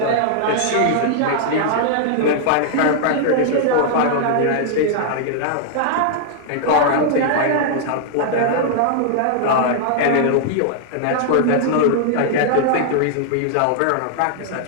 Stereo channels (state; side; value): different; both; correlation -0.01